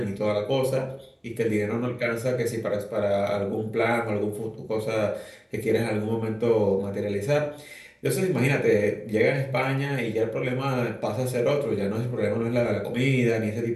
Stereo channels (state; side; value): identical; both; correlation 1.00